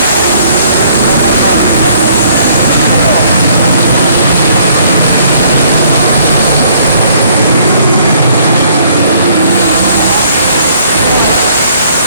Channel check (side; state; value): both; inverted; correlation -0.62